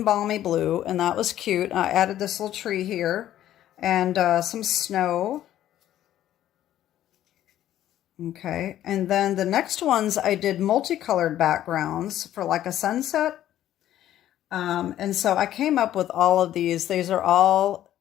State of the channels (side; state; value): right; quieter; 12.3 dB